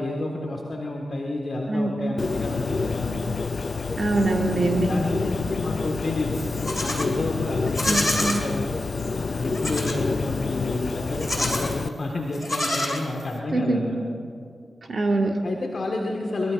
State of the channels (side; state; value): both; normal; correlation 0.90